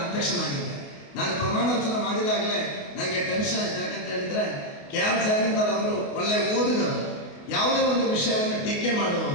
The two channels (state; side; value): late; right; 28 ms